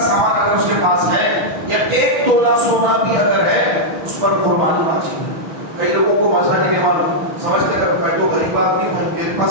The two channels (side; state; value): left; late; 5.9 ms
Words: اگر اس کے پاس ہے یا 1 تولہ سونا بھی اگر ہے اس پر قربانی واجب ہے. کئی لوگوں کو مزہ نہیں معلوم سمجھتے کہ میں تو غریب آدمی ہوں میرے